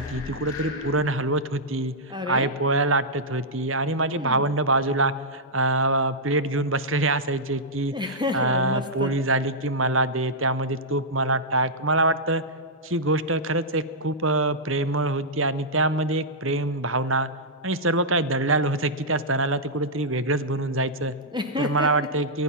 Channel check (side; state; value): both; normal; correlation -0.10